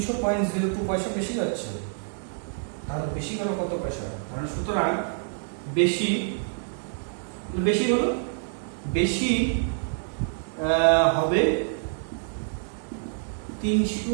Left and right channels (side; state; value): left; silent; digital silence